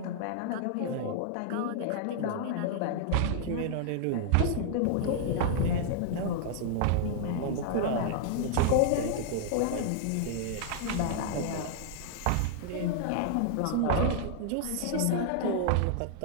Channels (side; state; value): both; different; correlation -0.01